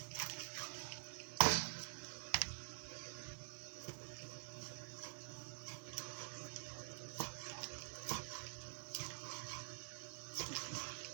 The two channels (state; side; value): silent; left; digital silence